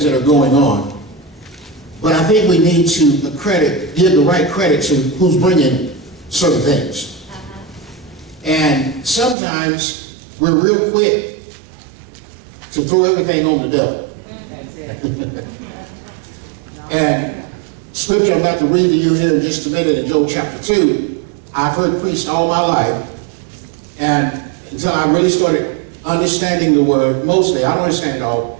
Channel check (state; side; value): drops out; left; at 9.3 s